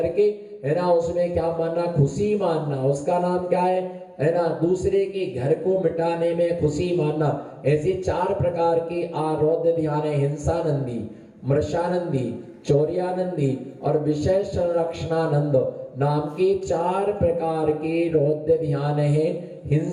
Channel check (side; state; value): both; identical; correlation 1.00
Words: है ना, उसमें क्या मानना? खुशी मानना। उसका नाम क्या है ना? दूसरे के घर को मिटाने में खुशी मानना। ऐसे 4 प्रकार के रौद्र ध्यान है। हिंसानंदी, मृषानंदी, चौर्यानंदी और विषय संरक्षणानंद नाम के 4 प्रकार के रौद्र ध्यान है।